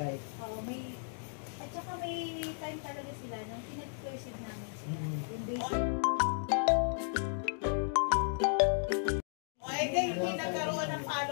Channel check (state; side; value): silent; right; digital silence